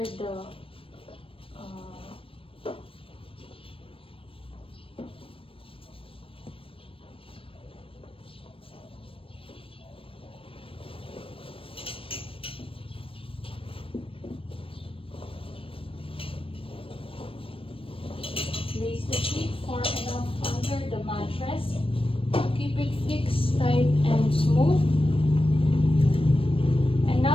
the place the sheet far enough under the mattress. Keep it fixed, tight, and smooth. And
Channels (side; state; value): right; late; 0.26 ms